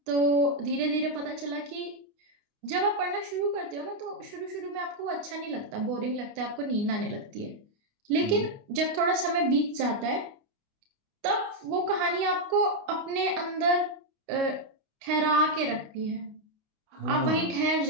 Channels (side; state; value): left; late; 28 ms